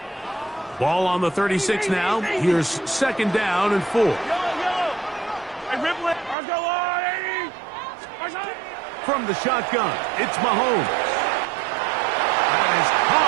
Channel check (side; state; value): left; drops out; at 6.4 s